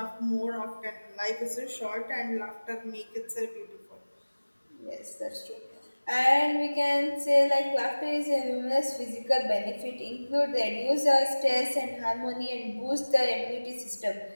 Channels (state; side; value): inverted; both; correlation -1.00